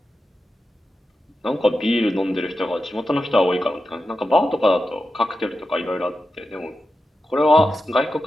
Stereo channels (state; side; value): normal; both; correlation 0.90